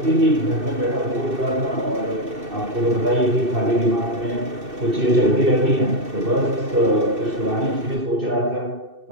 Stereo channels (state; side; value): late; left; 2.6 ms